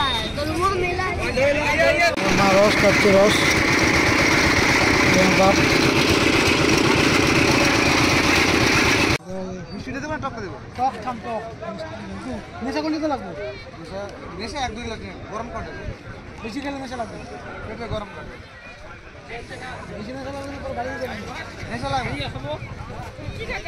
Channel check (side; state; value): both; identical; correlation 1.00